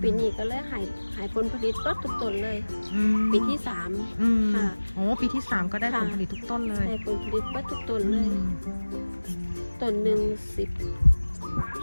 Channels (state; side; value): inverted; both; correlation -1.00